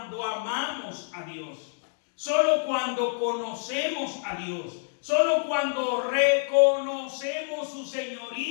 amamos a Dios, solo cuando conocemos a Dios, solo cuando reconocemos su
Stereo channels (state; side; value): silent; right; digital silence